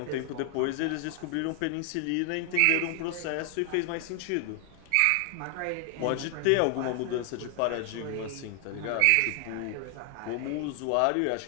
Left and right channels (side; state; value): both; different; correlation 0.00